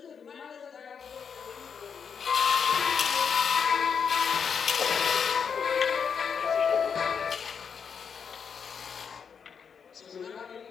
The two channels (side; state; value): right; quieter; 6.6 dB